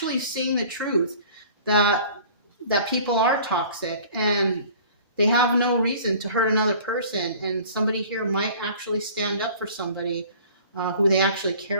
seeing the truth that people are toxic and they have no reason to hurt another person, and somebody here might actually stand up for somebody who they actually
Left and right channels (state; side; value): inverted; both; correlation -0.47